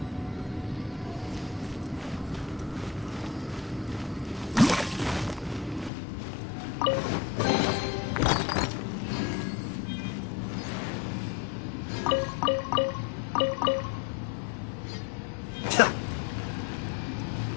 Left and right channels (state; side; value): drops out; right; at 5.9 s